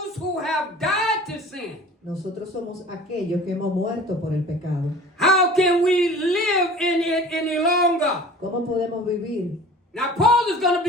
who have died to sin. nosotros somos aquellos que hemos muerto por el pecado. How can we live in it any longer? ¿Cómo podemos vivir? Now Paul is going to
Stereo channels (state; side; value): normal; both; correlation 0.43